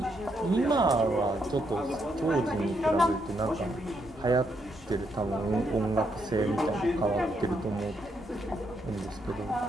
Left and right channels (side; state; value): both; normal; correlation 0.77